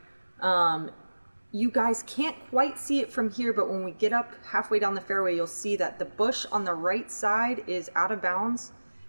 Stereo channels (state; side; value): inverted; both; correlation -1.00